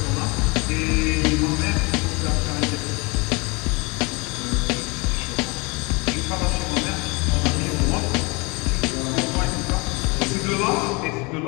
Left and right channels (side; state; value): right; quieter; 27.9 dB